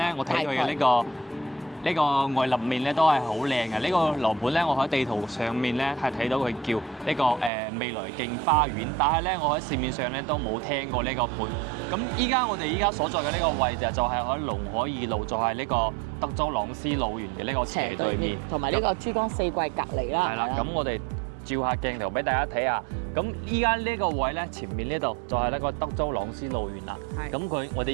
我睇佢嘅呢個外立面咧都係好靚嘅。呢個樓盤咧，我喺地圖上面咧係睇到佢叫呢個未來徑花園，但係咧我喺市面上咧都冇聽過呢個盤。咁我哋依家所在嘅呢個位置就係喺龍海二路，就係呢個德州朗斯路園嘅呢個斜對面，同埋呢個珠江四季隔離啦。係啦，咁我哋照下鏡頭俾大家睇下。咁依家呢個位咧，前面呢度就係呢個德州朗斯路園啦。咁我哋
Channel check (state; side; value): drops out; left; at 7.5 s